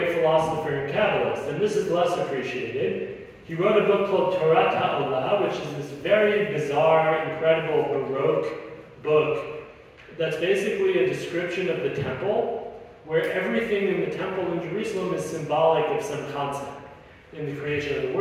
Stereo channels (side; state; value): both; identical; correlation 1.00